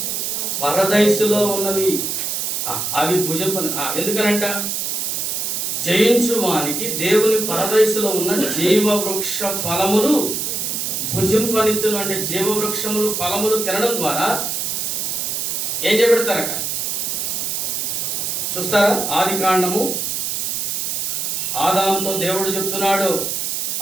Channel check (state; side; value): noise; right; hiss, 1 dB below the sound